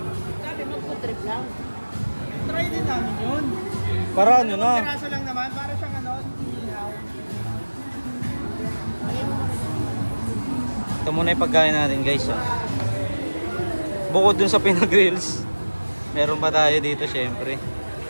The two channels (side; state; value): both; inverted; correlation -1.00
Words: Sabi magpo-trip lang. Try din namin yun. Para ano na? Piraso lang naman, para siyang ano, ihaw. Ito muna yung pagkain natin guys. Oh. Bukod dun sa pinag-grills, meron pa tayo dito syempre.